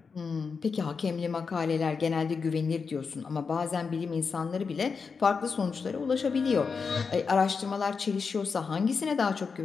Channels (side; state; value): right; quieter; 5.3 dB